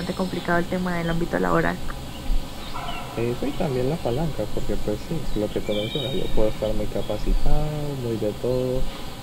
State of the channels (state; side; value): identical; both; correlation 1.00